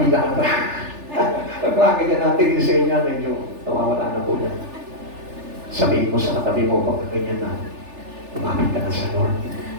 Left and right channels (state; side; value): late; left; 3.4 ms